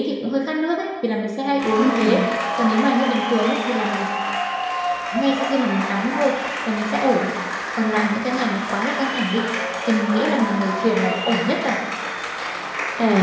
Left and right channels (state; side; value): identical; both; correlation 1.00